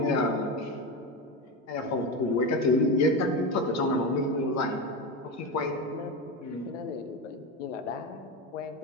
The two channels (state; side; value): normal; both; correlation 0.18